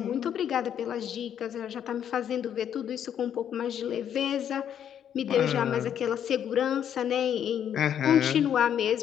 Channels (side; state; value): right; quieter; 9.3 dB